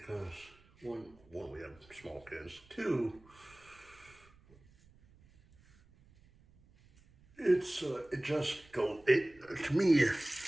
one, we have small kids. Two, it just goes. To me,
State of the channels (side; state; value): right; noise; rumble, 27 dB below the sound